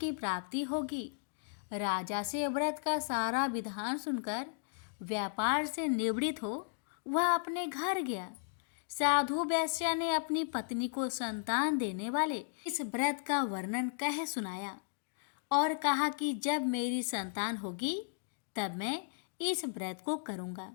प्राप्ति होगी। राजा से व्रत का सारा विधान सुनकर व्यापार से निवृत्त हो वह अपने घर गया। साधु वैश्य ने अपनी पत्नी को संतान देने वाले इस व्रत का वर्णन कह सुनाया और कहा कि जब मेरी संतान होगी तब मैं इस व्रत को करूँगा।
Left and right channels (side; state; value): right; silent; digital silence